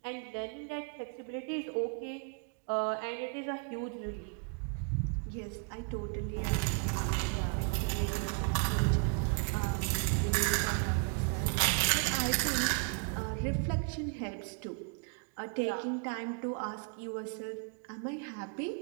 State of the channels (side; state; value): left; quieter; 39.7 dB